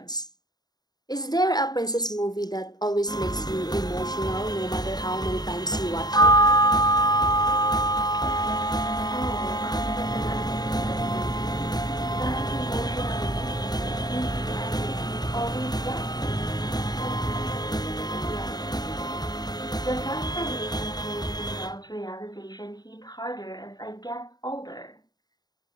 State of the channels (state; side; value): late; right; 0.19 ms